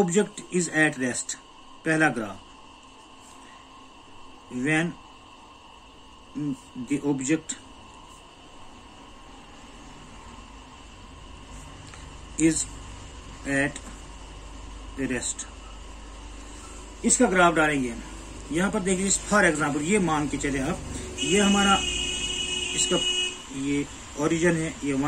is at rest. पहला graph, when the object is at rest, इसका ग्राफ डालेंगे। यहां पर देखिए, फॉर एग्जांपल ये मान के चले आप, ये हमारा इसका ये ओरिजिन है, ये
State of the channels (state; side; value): identical; both; correlation 1.00